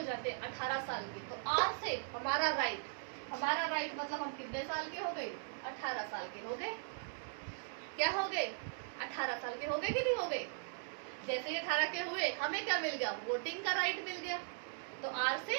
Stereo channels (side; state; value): left; silent; 52 dB below the other